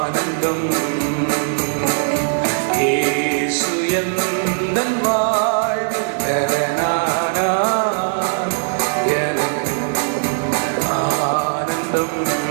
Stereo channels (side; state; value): left; silent; 64 dB below the other